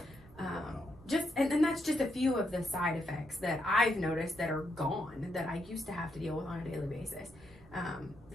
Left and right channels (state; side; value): noise; right; rumble, 22 dB below the sound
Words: And that's just a few of the side effects that I've noticed that are gone that I used to have to deal with on a daily basis.